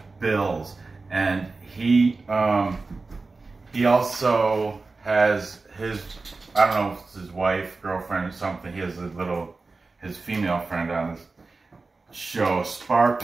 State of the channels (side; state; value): left; quieter; 3.8 dB